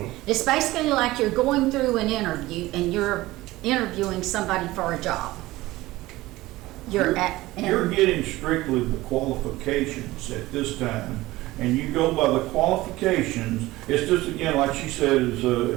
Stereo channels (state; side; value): quieter; left; 18.2 dB